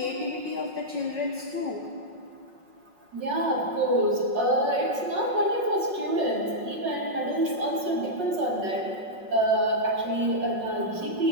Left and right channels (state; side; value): late; left; 5.5 ms